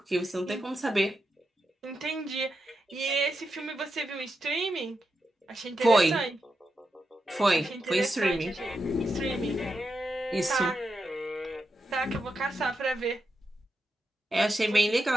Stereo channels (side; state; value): both; normal; correlation 0.87